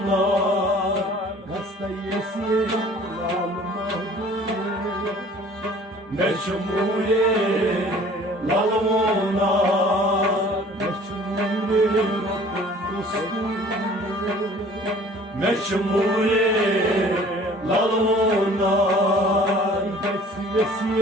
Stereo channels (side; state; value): both; normal; correlation 0.50